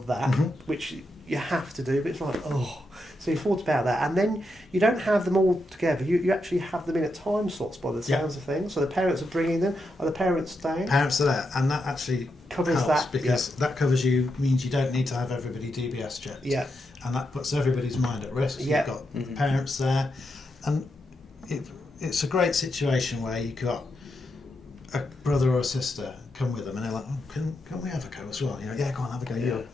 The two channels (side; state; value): both; normal; correlation 0.84